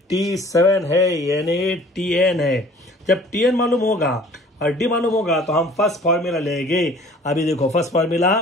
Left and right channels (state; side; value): normal; both; correlation 0.50